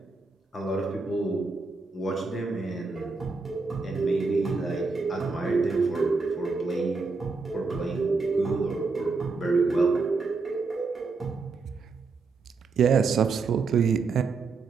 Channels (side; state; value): left; quieter; 4.3 dB